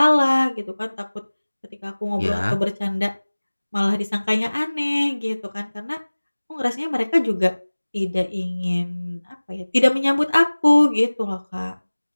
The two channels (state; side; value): inverted; both; correlation -1.00